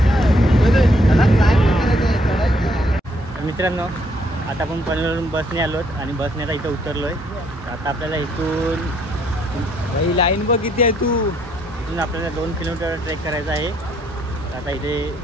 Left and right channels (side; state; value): both; normal; correlation 0.69